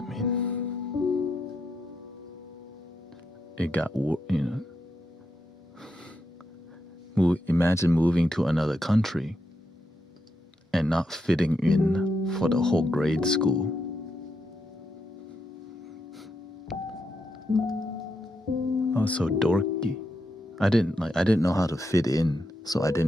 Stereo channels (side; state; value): both; normal; correlation 0.83